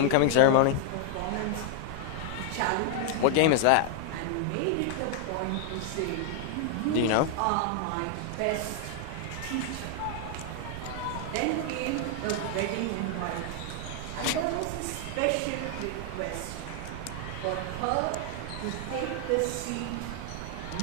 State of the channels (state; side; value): different; both; correlation 0.00